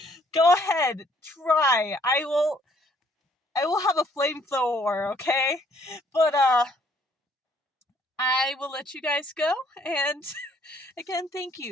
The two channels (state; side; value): normal; both; correlation 0.64